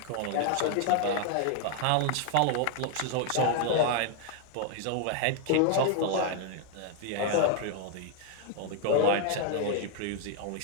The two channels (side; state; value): both; different; correlation 0.00